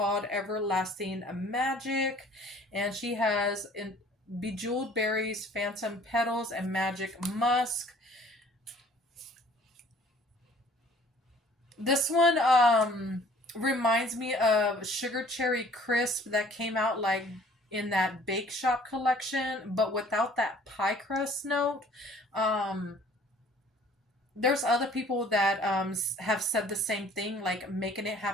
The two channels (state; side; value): normal; both; correlation 0.54